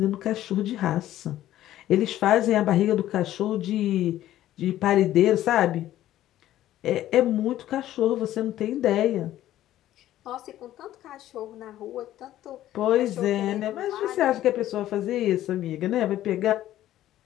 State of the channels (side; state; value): right; quieter; 13.4 dB